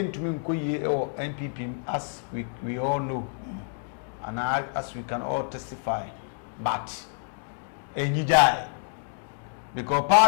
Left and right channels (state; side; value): silent; right; 59 dB below the other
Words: or NPP as we all know. and as we can all testify, but enyijai because